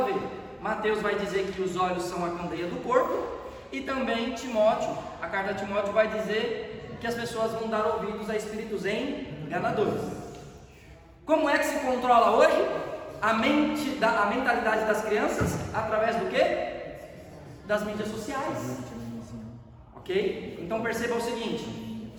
vê. Mateus vai dizer que os olhos são a candeia do corpo, e também Timóteo, a carta de Timóteo vai dizer que as pessoas vão dar ouvidos a espíritos enganadores. Como é que se controla hoje a mentalidade das crianças? Através do quê? Das mídias sociais. Ok? Então perceba o seguinte:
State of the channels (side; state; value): both; identical; correlation 1.00